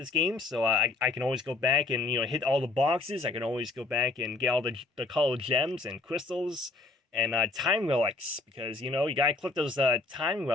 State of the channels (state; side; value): quieter; right; 3.5 dB